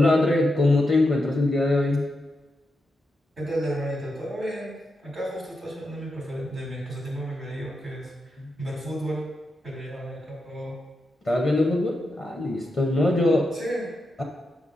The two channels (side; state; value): both; normal; correlation 0.87